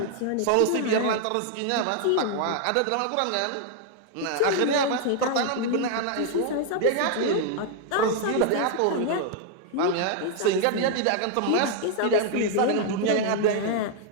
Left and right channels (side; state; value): both; different; correlation 0.00